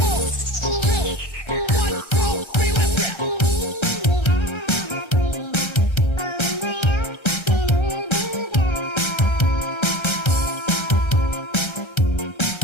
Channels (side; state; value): right; late; 1.3 ms